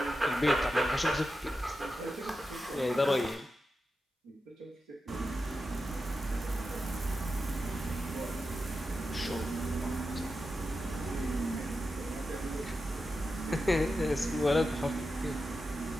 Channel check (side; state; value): both; normal; correlation 0.90